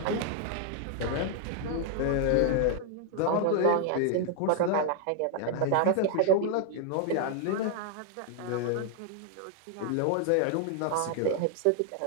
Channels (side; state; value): both; different; correlation 0.00